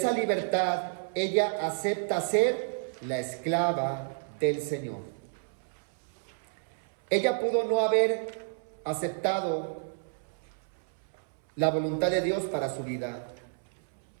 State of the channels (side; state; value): left; silent; 57 dB below the other